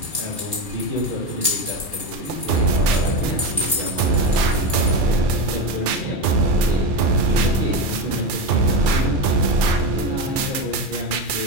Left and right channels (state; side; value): late; right; 2.4 ms